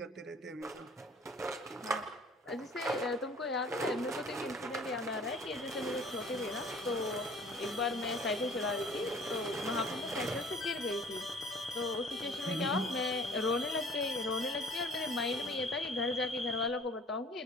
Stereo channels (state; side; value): normal; both; correlation 0.51